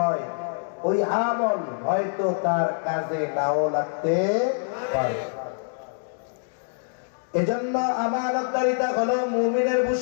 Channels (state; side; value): silent; right; digital silence